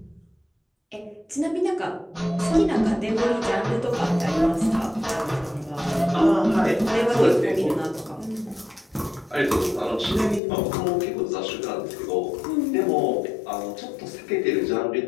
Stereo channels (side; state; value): right; drops out; at 10.4 s